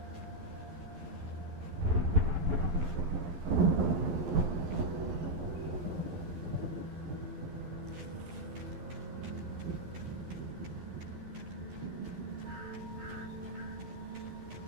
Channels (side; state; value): left; late; 11 ms